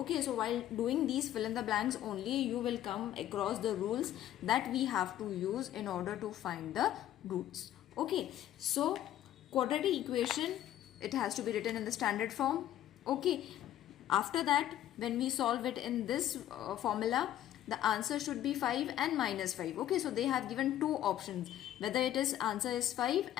so while doing these fill in the blanks only, you will come across the rules that we have to use in order to find the roots. Okay, so quadratic equation, it has to be written in the standard form. Okay, after that when we solve it in this formula, the answer should be 5 and minus 5. Okay, so they have given two options, whether it is answer is 5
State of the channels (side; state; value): right; quieter; 12.3 dB